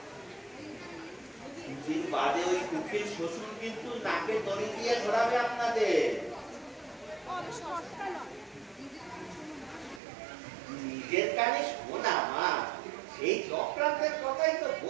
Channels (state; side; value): drops out; left; at 10.0 s